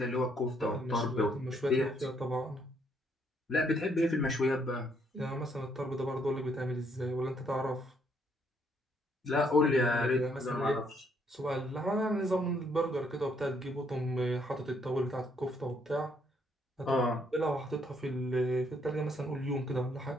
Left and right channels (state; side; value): normal; both; correlation 0.70